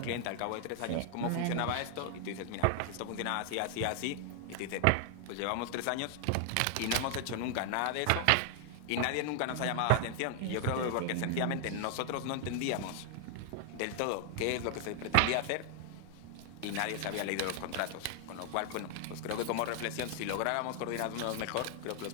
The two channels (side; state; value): both; different; correlation 0.00